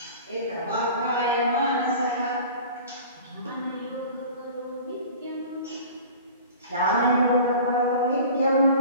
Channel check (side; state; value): both; inverted; correlation -0.42